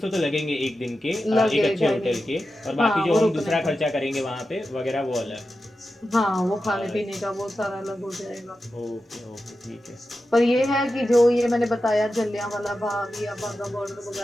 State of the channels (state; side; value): normal; both; correlation 0.91